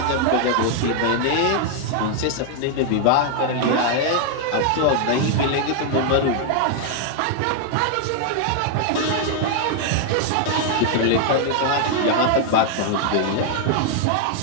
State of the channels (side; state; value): both; different; correlation 0.00